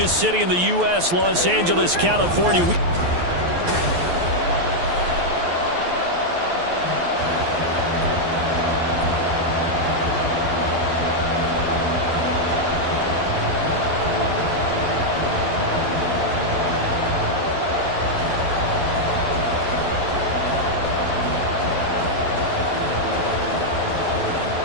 city in the U.S., Los Angeles, California.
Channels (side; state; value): left; late; 12 ms